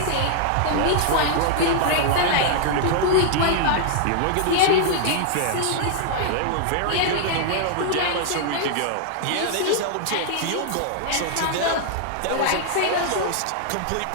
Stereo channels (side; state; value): both; different; correlation -0.01